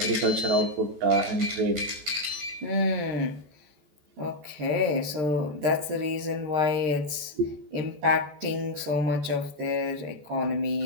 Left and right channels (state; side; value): late; left; 14 ms